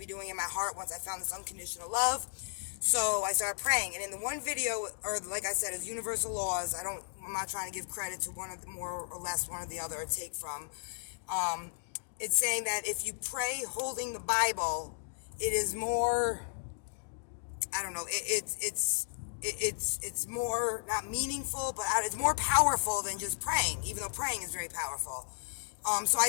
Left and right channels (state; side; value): silent; right; digital silence